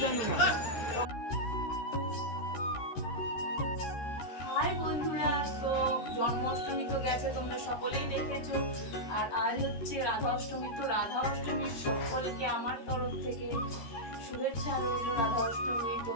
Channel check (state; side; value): late; right; 13 ms